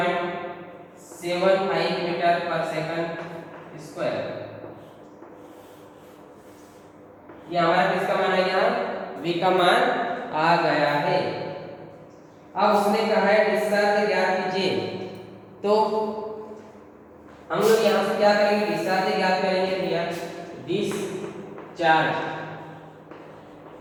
मीटर पर सेकंड स्क्वायर। ये हमारा किसका मान है, यहाँ v का मान आ गया है। अब उसने कहा है डिस्चार्ज ज्ञात कीजिए, तो हम लोग यहाँ से क्या करेंगे, डिस्चार्ज ज्ञात करेंगे भैया, डिस्चार्ज।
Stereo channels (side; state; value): both; identical; correlation 1.00